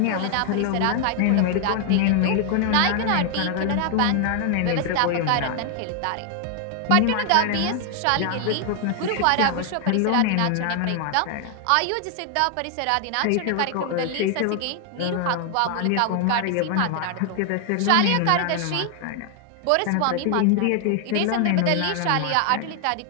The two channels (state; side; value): different; both; correlation 0.00